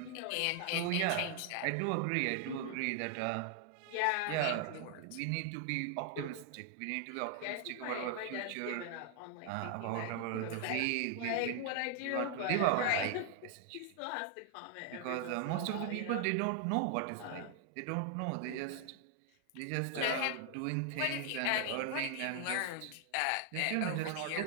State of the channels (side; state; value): both; different; correlation 0.00